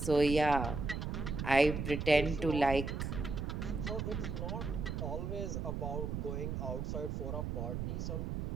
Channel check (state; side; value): noise; right; rumble, 3 dB below the sound